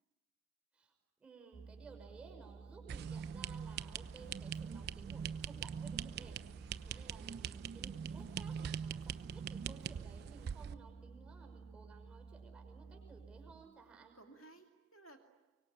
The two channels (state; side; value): quieter; left; 6.8 dB